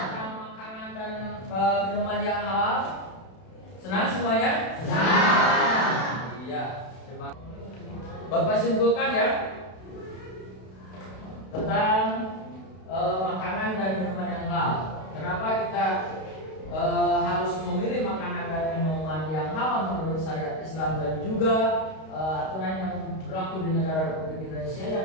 makanan dan minuman yang halal? Senang semuanya? Iya. Bapak simpulkan ya tentang makanan dan minuman yang halal. Kenapa kita harus memilih makanan dan minuman yang halal menurut syariat Islam dan juga aturan yang berlaku di negara Republik Indonesia yang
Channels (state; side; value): late; right; 32 ms